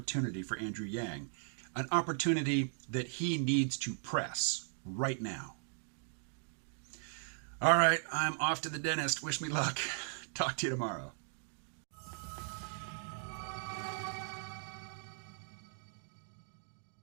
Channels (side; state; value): left; silent; digital silence